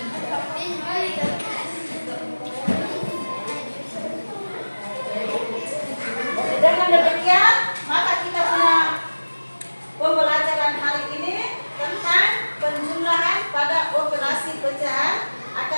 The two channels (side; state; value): both; inverted; correlation -1.00